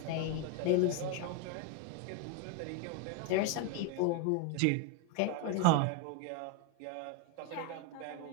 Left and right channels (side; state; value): both; different; correlation 0.02